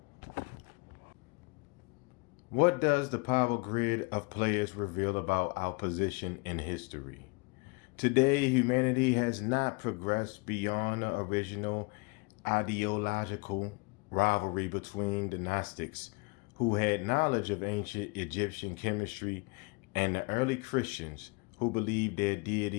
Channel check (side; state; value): right; quieter; 29.6 dB